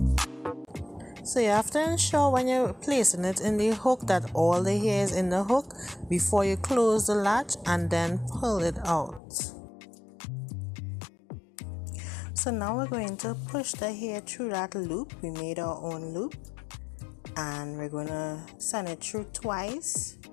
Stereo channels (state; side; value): drops out; right; at 9.2 s